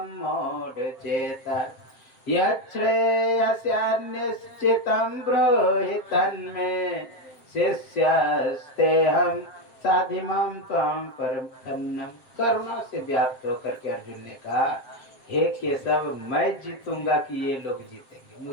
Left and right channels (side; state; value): right; late; 7.4 ms